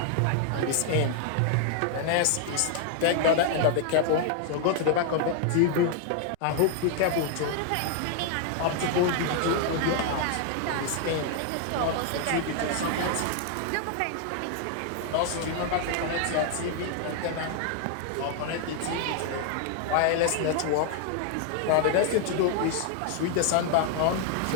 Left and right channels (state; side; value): different; both; correlation 0.00